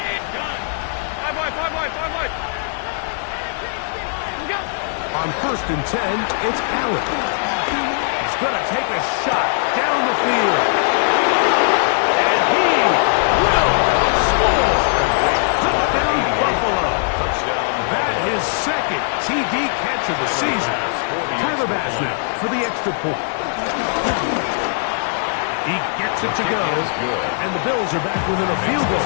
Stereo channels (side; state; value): right; silent; digital silence